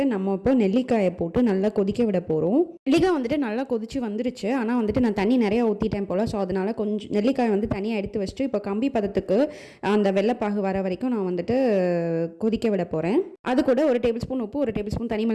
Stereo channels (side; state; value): both; identical; correlation 1.00